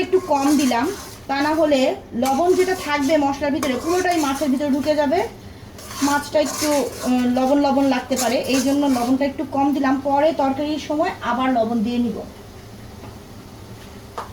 একটু কম দিলাম। তা না হলে লবণ যেটা থাকবে মশলার ভিতরে পুরোটাই মাছের ভিতরে ঢুকে যাবে, মাছটা একটু লবণ লবণ লাগতে পারে। এই জন্য লবণটা একটু কম দিলাম, পরে তরকারির সময় আবার লবণ দিয়ে নিব।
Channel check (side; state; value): both; identical; correlation 1.00